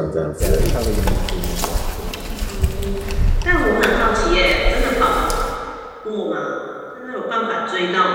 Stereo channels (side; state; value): both; identical; correlation 1.00